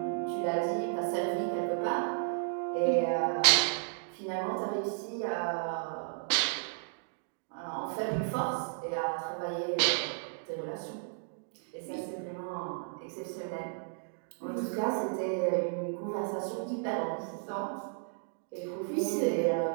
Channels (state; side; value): silent; left; digital silence